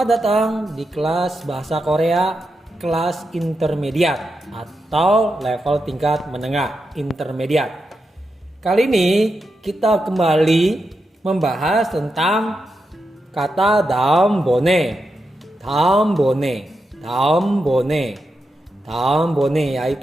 datang di kelas Bahasa Korea kelas intermediate atau level tingkat menengah intermediate. Kali ini kita kembali membahas tentang kata daum bone. Daum bone, daum bone, daum bone,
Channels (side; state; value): both; normal; correlation 0.87